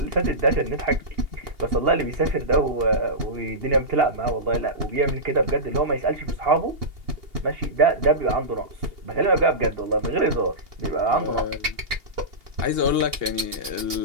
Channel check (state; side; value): late; left; 2.8 ms